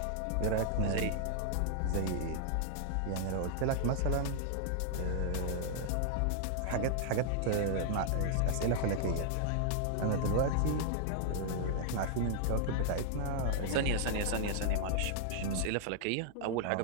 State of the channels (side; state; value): both; different; correlation -0.01